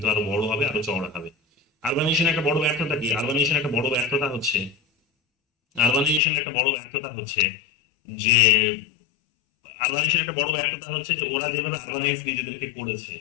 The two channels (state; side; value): drops out; right; at 6.2 s